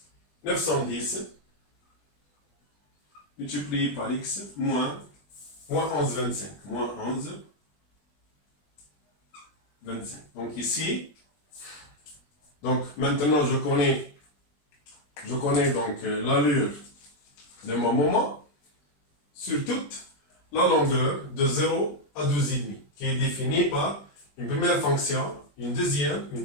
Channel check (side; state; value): right; late; 20 ms